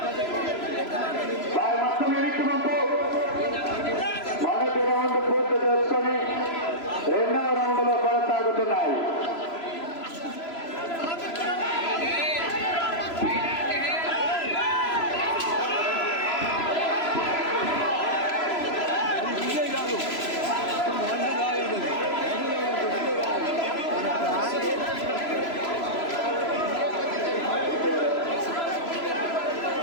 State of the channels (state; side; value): late; right; 3.0 ms